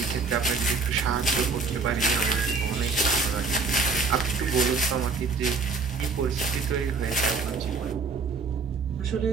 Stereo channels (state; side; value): quieter; left; 4.4 dB